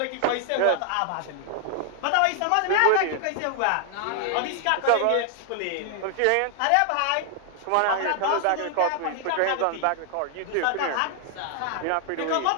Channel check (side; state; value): both; different; correlation 0.00